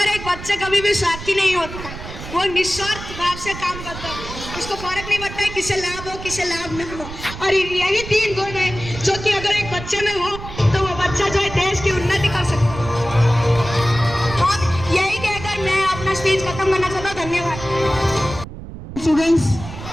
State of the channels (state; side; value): noise; right; rumble, 11 dB below the sound